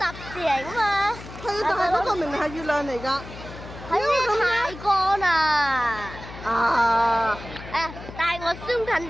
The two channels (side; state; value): left; noise; hum, 14 dB below the sound